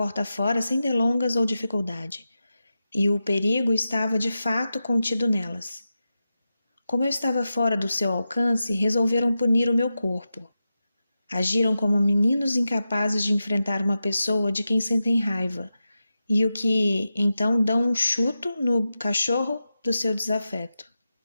fora sem delongas ou dificuldade, e o perigo estava de fato contido nelas. Como eu estava fora do seu alcance, resolveram punir o meu corpo. Agiram como meninos incapazes de enfrentar uma pessoa de quem sentem raiva, e o que então dão um chuto no cachorro do seu desafeto.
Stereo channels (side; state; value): both; inverted; correlation -0.91